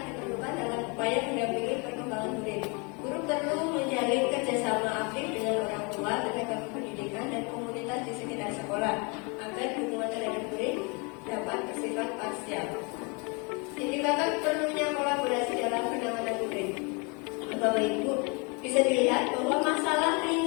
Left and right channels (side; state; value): right; quieter; 31.6 dB